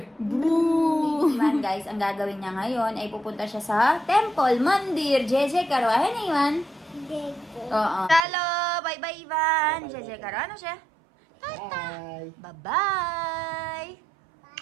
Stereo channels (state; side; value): drops out; left; at 8.2 s